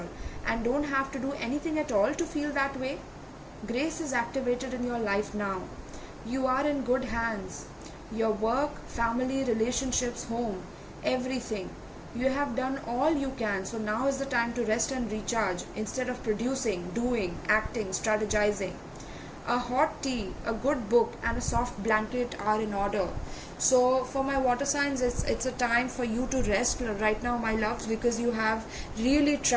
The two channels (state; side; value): identical; both; correlation 1.00